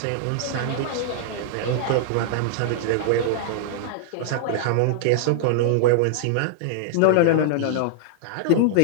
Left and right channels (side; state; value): both; different; correlation -0.01